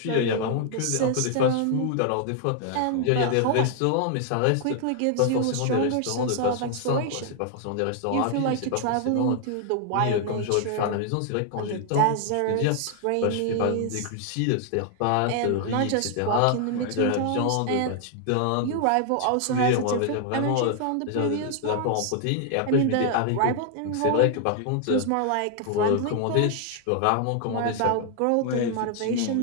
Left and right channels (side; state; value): both; different; correlation 0.00